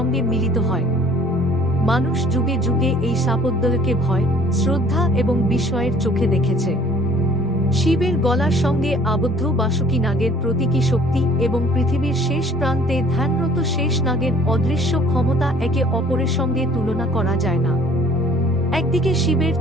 মিলিত হয়। মানুষ যুগে যুগে এই সাপদ্বলকে ভয়, শ্রদ্ধা এবং বিস্ময়ের চোখে দেখেছে। শিবের গলার সঙ্গে আবদ্ধ বাসুকি নাগের প্রতীকী শক্তি এবং পৃথিবীর শেষ প্রান্তে ধ্যানরত শেষ নাগের অদৃশ্য ক্ষমতা একে অপরের সঙ্গে তুলনা করা যায় না। একদিকে শিবের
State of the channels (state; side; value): normal; both; correlation 0.54